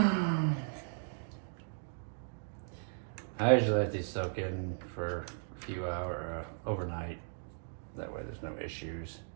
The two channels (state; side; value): silent; left; digital silence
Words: I I usually let these soak in for a few hours, overnight. That way there's no issues.